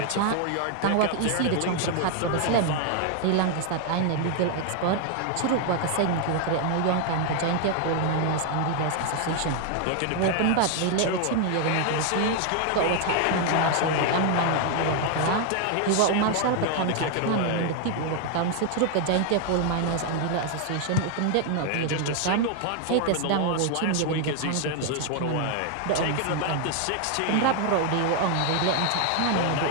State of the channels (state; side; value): different; both; correlation 0.00